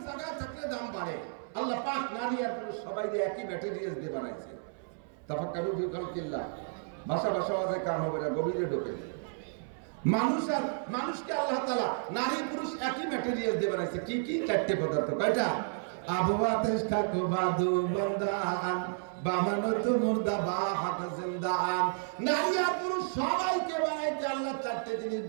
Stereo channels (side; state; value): left; silent; 57 dB below the other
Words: জায়গায় থাকলে দাম বাড়ে। আল্লাহ পাক নারী আর পুরুষ সবাই একই ম্যাটেরিয়ালস দিয়ে বানাইছে। তাফাক্কারু ফি খালকিল্লাহ, ভাষা ভাষা কাম হবে না, গভীরে ঢোকে। মানুষকে আল্লাহ তাআলা নারী পুরুষ একই ম্যাটেরিয়াল দিয়ে বানাইছে। কি 4টে পদার্থ। কয়টা? আবওয়াতেশ খাকো বাদু বন্দান বামানত মুর্দা বা হাত জিন্দান। নারী আর পুরুষ সবাইকে বানাইতে আল্লাহ চারটি জিনিস